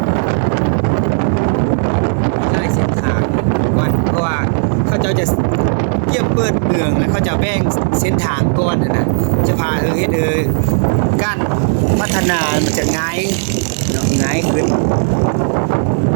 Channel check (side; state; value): left; silent; digital silence